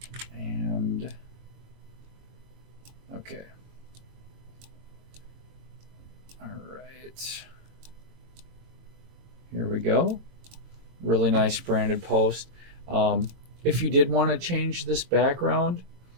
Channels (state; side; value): late; left; 22 ms